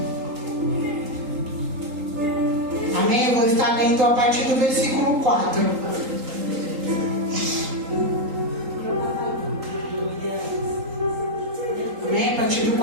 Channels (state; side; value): late; left; 3.8 ms